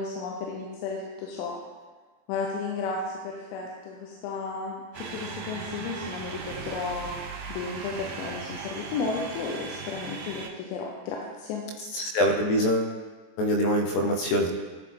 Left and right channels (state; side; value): late; right; 23 ms